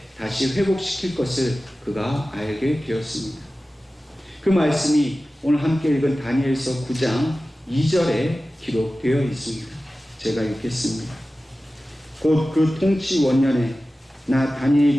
다시 회복시킬 것을 그가 알게 되었습니다. 그 말씀이 오늘 함께 읽은 다니엘서 9장 2절에 기록되어 있습니다. 제가 읽겠습니다. 곧 그 통치 원년에 나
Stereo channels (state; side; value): normal; both; correlation 0.95